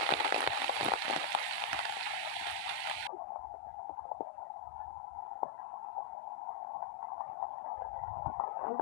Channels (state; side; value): drops out; right; at 3.1 s